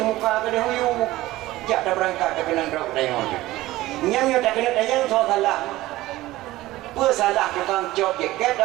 kena huyu jak dah berangkat dah kena drop dayang nyamnya tak kena dayang so salah apa salah tukang cop jaket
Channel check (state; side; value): quieter; left; 17.2 dB